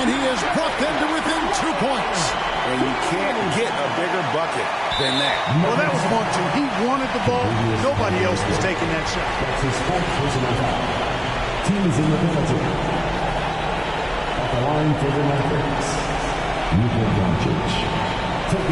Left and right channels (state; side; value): identical; both; correlation 1.00